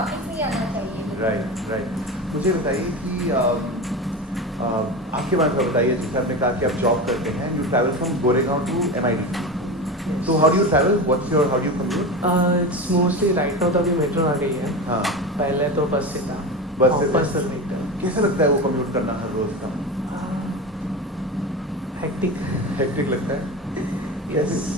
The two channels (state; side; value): normal; both; correlation 0.25